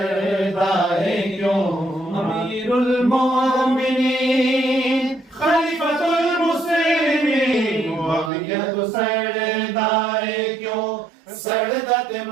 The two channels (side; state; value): left; drops out; at 8.3 s